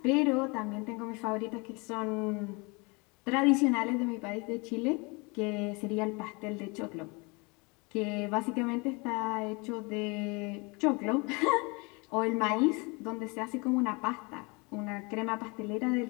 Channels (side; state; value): right; quieter; 28.7 dB